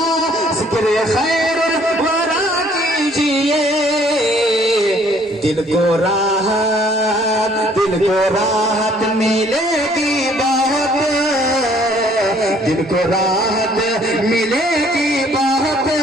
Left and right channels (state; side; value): normal; both; correlation 0.60